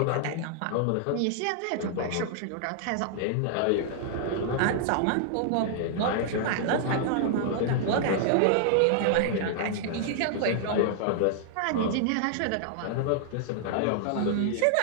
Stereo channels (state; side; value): different; both; correlation -0.01